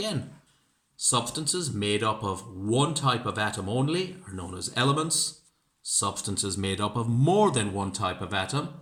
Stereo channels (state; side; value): identical; both; correlation 1.00